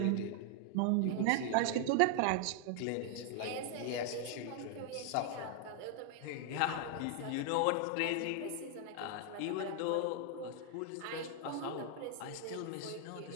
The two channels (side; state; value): both; different; correlation 0.00